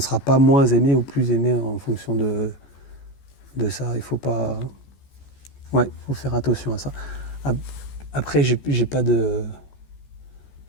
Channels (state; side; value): late; right; 14 ms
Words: sera pas moins aimé ou plus aimé en fonction de ça. Il faut pas. Ouais, il faut faire attention à ça. Après, j'ai pas de.